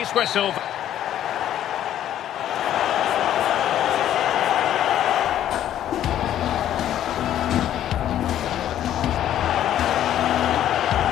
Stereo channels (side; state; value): right; quieter; 11.4 dB